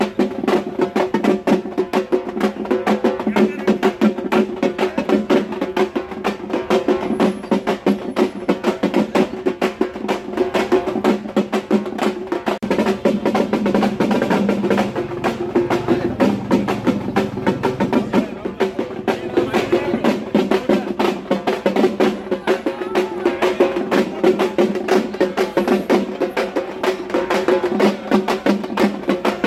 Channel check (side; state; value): both; identical; correlation 1.00